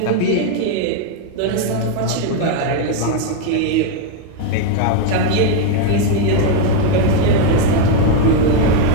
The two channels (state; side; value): different; both; correlation 0.01